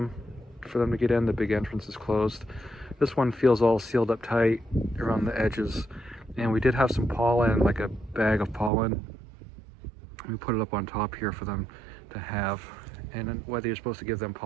for them to get in. The big entrance is closed. This one feels all sealed up tight around the edges, and we did have some pollen, like a bag of pollen. We put it up on top here for them to have, and then whether you're supposed to give them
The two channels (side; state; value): left; drops out; at 8.7 s